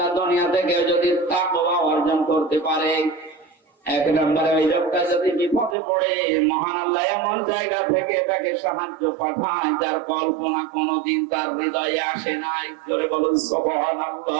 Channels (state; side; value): drops out; left; at 5.8 s